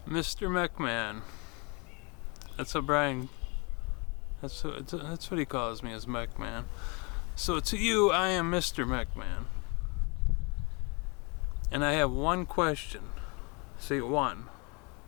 Mr. McMahon. That's what Brian... That's what he calls me, as McMahon. So to you, I am Mr. McMahon. And I have one question. See, one.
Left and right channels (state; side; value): quieter; right; 31.1 dB